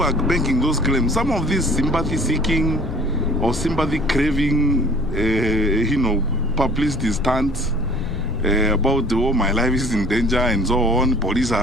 are making those claims, some of these sympathy-seeking or sympathy-craving, publicity stunts about, oh, my life is in danger and so on, police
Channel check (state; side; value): noise; left; rumble, 7 dB below the sound